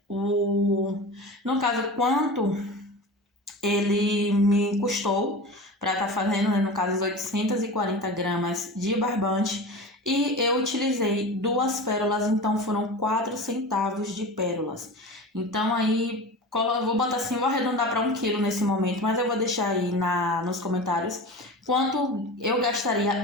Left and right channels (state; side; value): normal; both; correlation 0.31